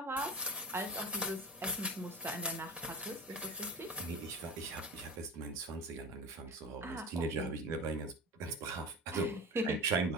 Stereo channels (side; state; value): both; normal; correlation 0.33